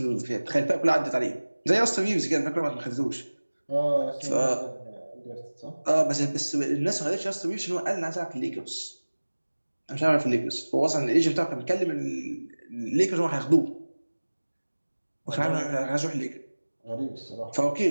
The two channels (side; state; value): both; inverted; correlation -1.00